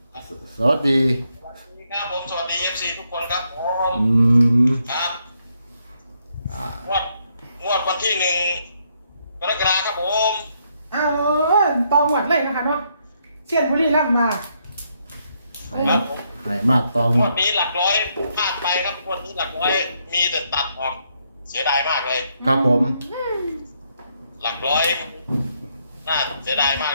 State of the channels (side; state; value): both; inverted; correlation -0.75